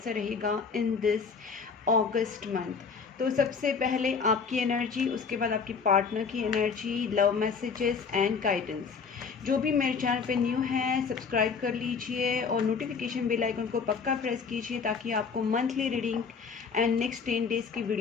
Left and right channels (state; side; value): quieter; right; 5.6 dB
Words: रहेगा इन दिस अगस्त मंथ। तो सबसे पहले आपकी एनर्जी, उसके बाद आपकी पार्टनर की energy, love messages and guidance. जो भी मेरे चैनल पे न्यू है सब्सक्राइब कर लीजिए और नोटिफिकेशन बेल आइकन को पक्का प्रेस कीजिए ताकि आपको monthly reading and next 10 days की